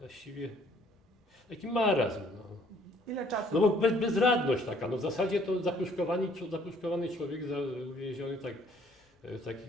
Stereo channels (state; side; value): normal; both; correlation 0.61